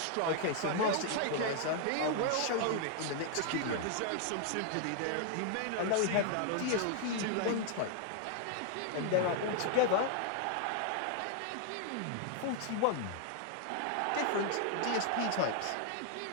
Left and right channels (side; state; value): both; different; correlation 0.00